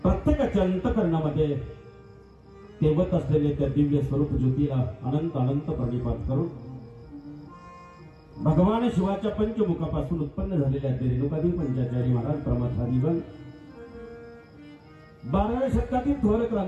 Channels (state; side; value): identical; both; correlation 1.00